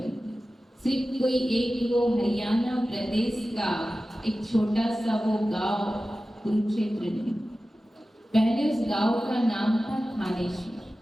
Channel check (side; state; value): both; normal; correlation 0.95